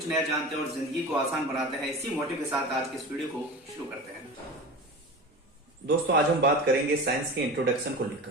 नया जानते हैं और जिंदगी को आसान बनाते हैं। इसी मोटिव के साथ आज के इस वीडियो को शुरू करते हैं। दोस्तों, आज हम बात करेंगे साइंस के इंट्रोडक्शन को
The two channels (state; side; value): normal; both; correlation 0.32